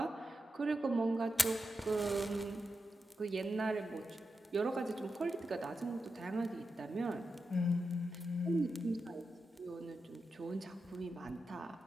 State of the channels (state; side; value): normal; both; correlation 0.89